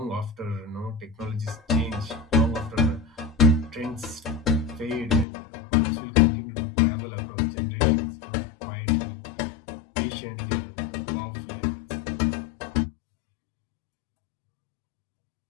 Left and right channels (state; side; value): drops out; right; at 5.2 s